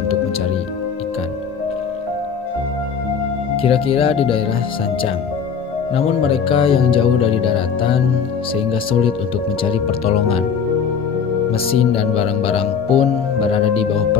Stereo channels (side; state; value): right; quieter; 6.6 dB